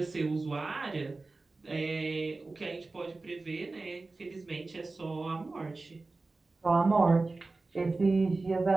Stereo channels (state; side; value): quieter; left; 3.5 dB